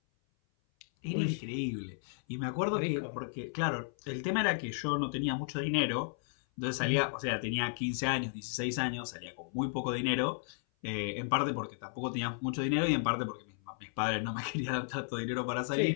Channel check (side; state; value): right; silent; 55 dB below the other